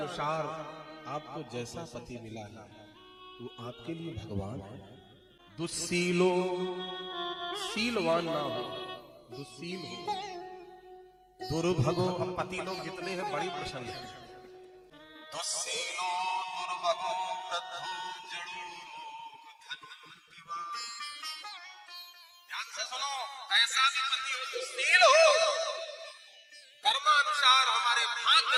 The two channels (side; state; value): both; identical; correlation 1.00